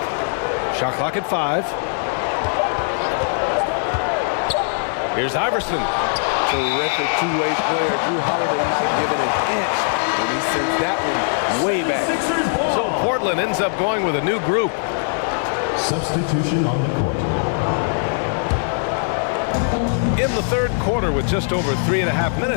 Shot clock at 5. Here's Iverson. Terrific two-way player. Drew Holiday not giving an inch when he sends that one way back. So Portland ends up going with a new group. Substitution on the court. In the third quarter with just over 3.5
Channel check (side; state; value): right; silent; digital silence